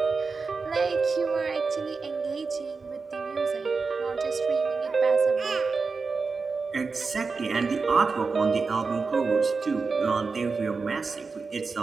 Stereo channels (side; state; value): left; quieter; 4.5 dB